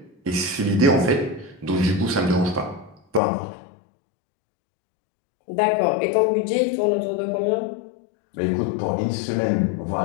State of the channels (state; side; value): drops out; right; at 3.2 s